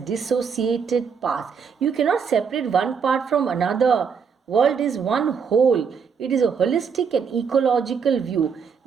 parts. You cannot separate one part from another. World is one whole. It is a holistic and ecological view.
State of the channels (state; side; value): quieter; left; 6.3 dB